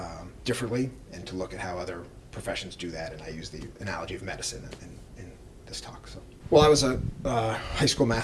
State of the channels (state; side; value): identical; both; correlation 1.00